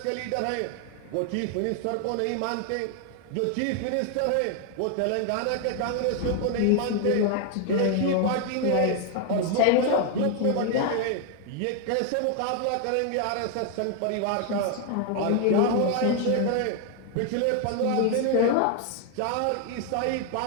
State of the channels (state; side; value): different; both; correlation 0.00